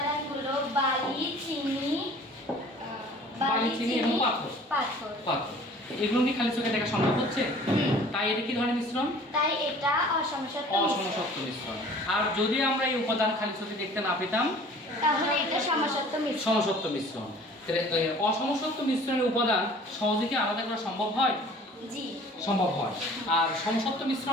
বালি, চিনি এবং পাথর। পাথর। এগুলো কি খালি চোখে দেখা সম্ভব হচ্ছে? তাই এটা কি ধরনের মিশ্রণ? তাই এটা অসমসত্ব মিশ্রণ। আর যদি আমরা এই উপাদান খালি চোখে দেখতে না পেতাম তাহলে এটা সমসত্ব মিশ্রণ। সমসত্ব মিশ্রণ। অসমসত্ব মিশ্রণের উপাদান সহজে কি আলাদা করা সম্ভব হয়? জি, সম্ভব হয়। আর সমসত্ব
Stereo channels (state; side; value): normal; both; correlation 0.49